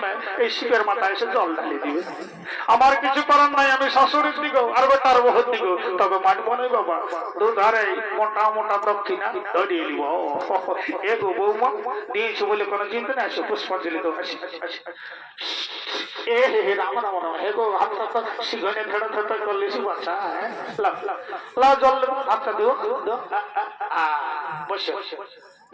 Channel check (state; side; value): identical; both; correlation 1.00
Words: এই শিবের মাথায় এসে জল ঢালি দিবে আমার কিছু করার নাই আমি শাশুড়ির দিকেও আর বেটার বহুর দিকেও তবে মানবো নয় বাবা দুধারে মোটা মোটা দক্ষিণা ধরিয়ে নিব এগো বৌমা দিয়েছি বলে কোনো চিন্তা নেই আসো পুষ্পাঞ্জলি তো এ হে রাম রাম রাম এগো হাতটা তো শিখনে ধরে ধরে করলিস বাচ্চা লা জল হাতটা দিও বসে